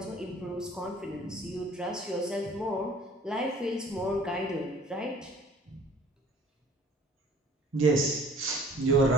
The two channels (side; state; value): both; normal; correlation 0.52